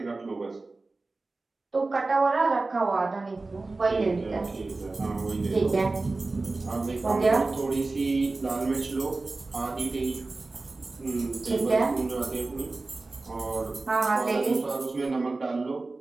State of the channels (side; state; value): left; quieter; 3.4 dB